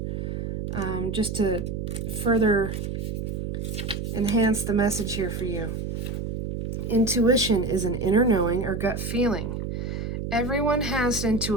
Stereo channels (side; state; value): right; noise; hum, 4 dB below the sound